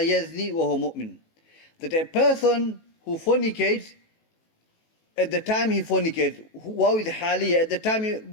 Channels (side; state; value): right; late; 18 ms